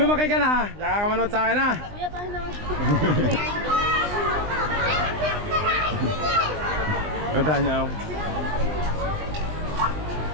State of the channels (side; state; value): left; late; 20 ms